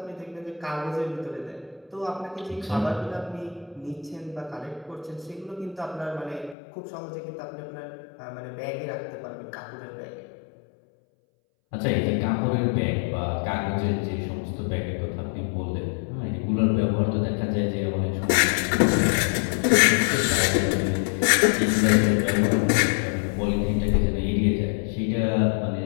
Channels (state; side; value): drops out; right; at 6.6 s